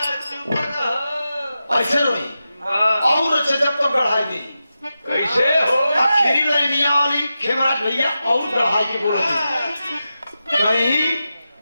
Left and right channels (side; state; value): both; inverted; correlation -0.91